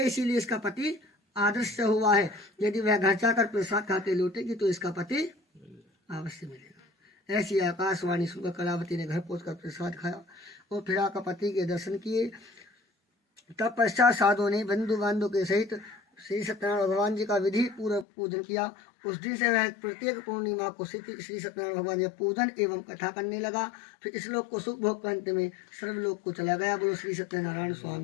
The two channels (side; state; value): right; drops out; at 18.1 s